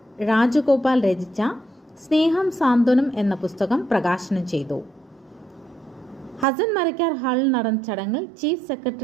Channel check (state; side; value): drops out; left; at 6.5 s